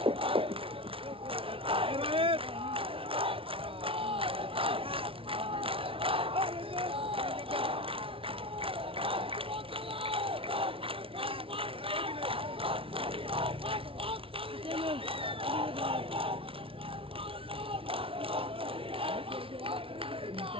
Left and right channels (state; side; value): late; left; 0.26 ms